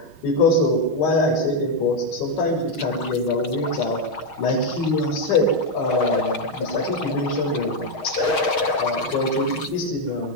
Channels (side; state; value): right; late; 6.4 ms